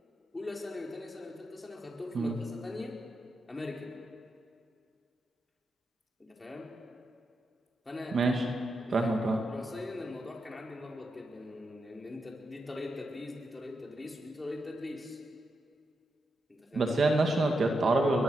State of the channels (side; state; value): both; normal; correlation 0.85